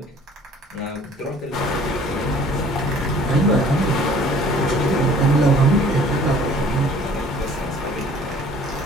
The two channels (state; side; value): normal; both; correlation 0.52